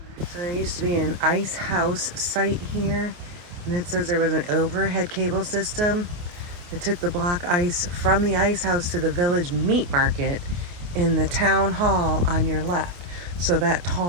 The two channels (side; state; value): left; late; 28 ms